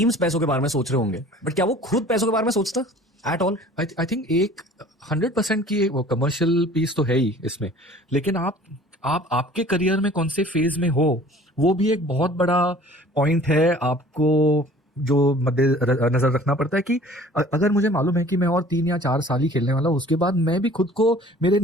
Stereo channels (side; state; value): both; normal; correlation 0.48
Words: पैसों के बारे में सोच रहे होंगे, बट क्या वो खुद पैसों के बारे में सोचता एट ऑल? आई थिंक एक 100% की वो कमर्शियल पीस तो है ही इसमें, लेकिन आप आपके करियर में कौन से फेज में हो, वो भी एक बहुत बड़ा पॉइंट है। आपको जो मद्दे नजर रखना पड़ता है कि अगर मुझे मालूम है कि मैं और 3 या 4 साल ही खेलने वाला हूँ, उसके बाद मैं भी खुद को मेरे